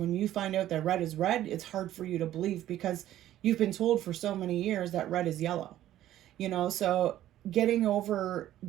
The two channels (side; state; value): left; quieter; 13.0 dB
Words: you find out that red is red, it's hard for you to believe because you've been told for so many years that red is yellow. You know, so getting over